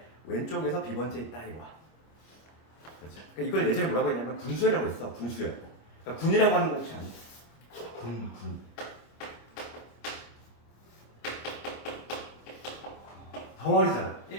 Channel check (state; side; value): late; right; 25 ms